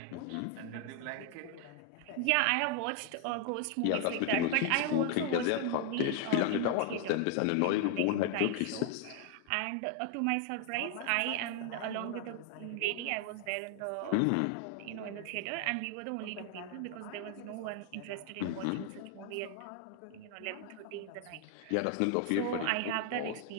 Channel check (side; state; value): both; different; correlation 0.00